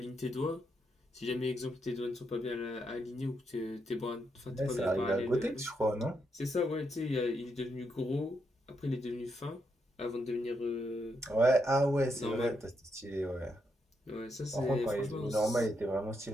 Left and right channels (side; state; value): both; normal; correlation 0.80